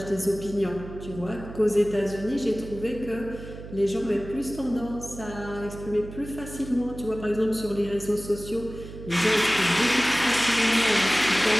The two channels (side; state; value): right; noise; hum, 13 dB below the sound